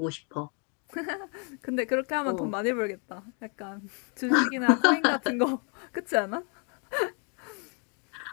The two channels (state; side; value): quieter; right; 37.8 dB